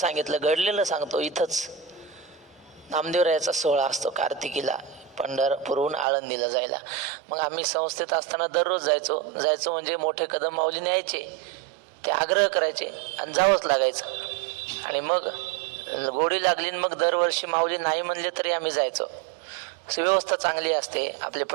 घडलेलं सांगतो. इथंच नामदेवरायाचा सोहळा असतो कार्तिकीला, पंढरपूरहून आळंदीला जायला. मग आम्ही संस्थेत असताना दररोज जायचो म्हणजे मोठे कदम माऊली न्यायचे, ते आग्रह करायचे आणि जावंच लागायचं. आणि मग गोडी लागली, मग दरवर्षी माऊली नाही म्हणले तरी आम्ही जायचो. व्यवस्था चांगली असते, आपले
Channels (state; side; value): drops out; left; at 6.1 s